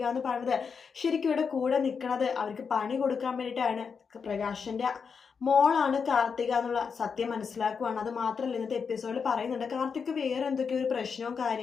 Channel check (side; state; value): right; quieter; 5.9 dB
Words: എന്ന് പറയുന്നത് ശരിക്കും ഇവിടെ കൂടെ നിൽക്കുന്നത് അവർക്ക് പണി കൊടുക്കാൻ വേണ്ടിയിട്ടാണ്. പ്രകാശിന്റെ മോളാണ് കാർത്തിക എന്നുള്ള സത്യം മനസ്സിലാക്കുവാണ്. അത് മാത്രമല്ല, ഇന്നത്തെ എപ്പിസോഡിൽ പറയുന്നുണ്ട് കാർത്തിക് വേറെ എന്തൊക്കെയോ ഒരു പ്രശ്നവും